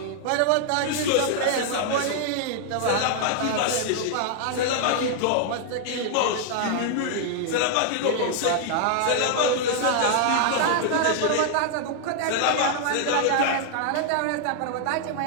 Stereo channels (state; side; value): different; both; correlation 0.00